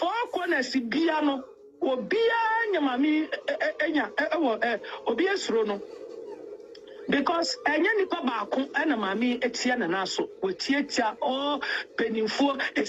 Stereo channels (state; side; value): identical; both; correlation 1.00